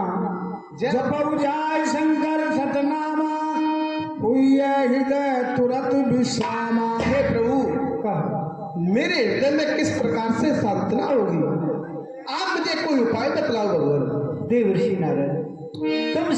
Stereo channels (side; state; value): both; identical; correlation 1.00